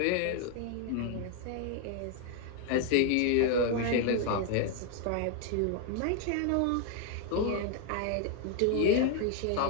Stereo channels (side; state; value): both; different; correlation 0.01